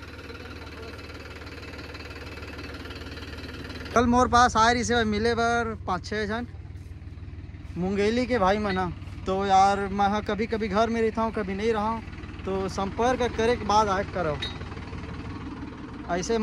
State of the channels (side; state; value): both; identical; correlation 1.00